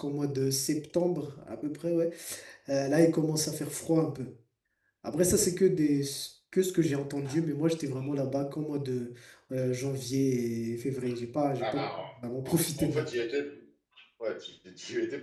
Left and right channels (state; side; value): identical; both; correlation 1.00